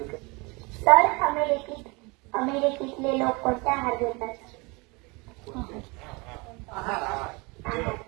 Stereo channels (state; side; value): quieter; left; 27.5 dB